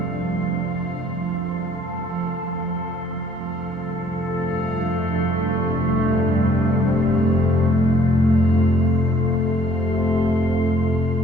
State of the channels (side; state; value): both; normal; correlation 0.59